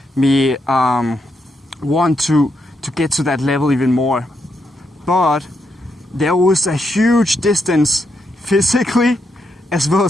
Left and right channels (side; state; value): both; normal; correlation 0.81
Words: me want to get to that level even more. But there was a huge distance physically as well